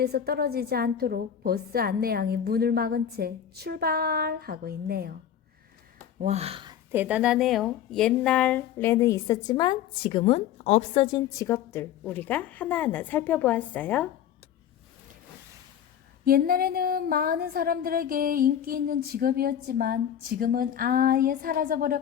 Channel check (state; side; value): quieter; right; 9.6 dB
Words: 떨어지지 않도록 버스 안내양이 문을 막은 채 출발하고 있네요. 와, 대단하네요. 옛날에는 있었지만 지금은 없어진 직업들 우리가 하나하나 살펴보았어요. 옛날에는 많은 사람들에게 인기 있는 직업이었지만 지금은 아예